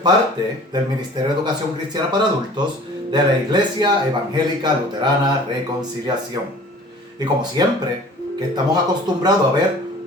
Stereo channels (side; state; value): both; normal; correlation 0.46